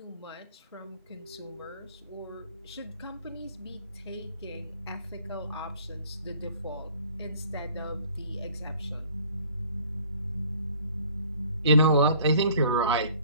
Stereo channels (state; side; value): inverted; both; correlation -0.54